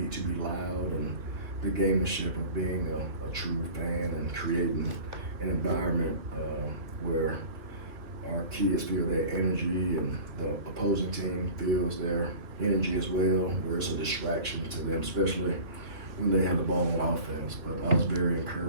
need to be loud, and the gamemanship of being a true fan and creating an environment where our kids feel their energy and the opposing team feels their energy as well, where it's a distraction to them, especially when they have the ball on offense. But I was very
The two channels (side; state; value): left; late; 2.7 ms